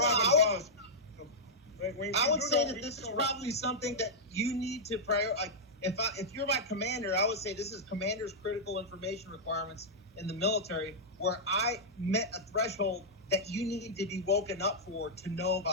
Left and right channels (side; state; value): both; normal; correlation -0.08